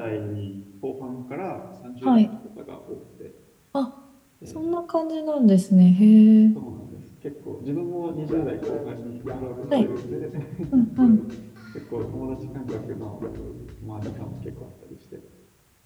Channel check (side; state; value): both; identical; correlation 1.00